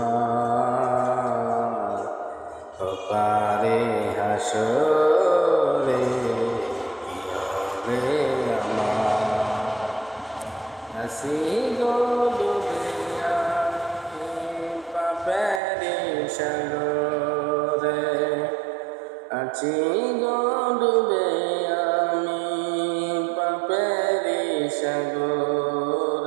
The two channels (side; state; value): left; drops out; at 15.6 s